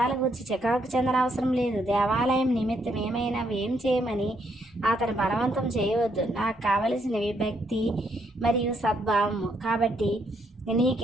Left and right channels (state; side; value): normal; both; correlation 0.74